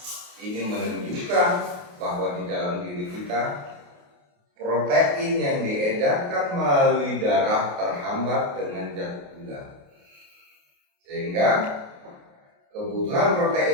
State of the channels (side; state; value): left; late; 28 ms